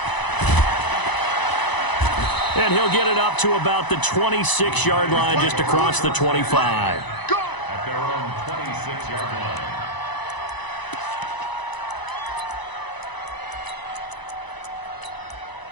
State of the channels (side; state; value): right; late; 1.0 ms